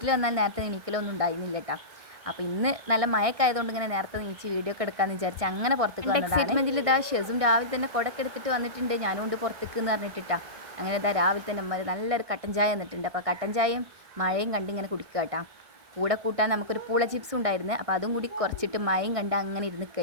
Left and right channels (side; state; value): left; late; 1.6 ms